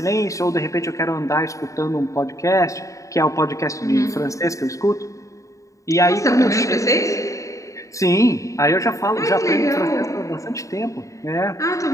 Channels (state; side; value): late; right; 0.16 ms